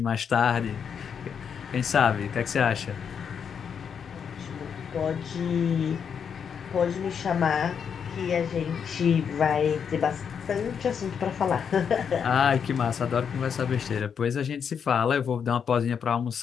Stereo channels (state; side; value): quieter; right; 7.2 dB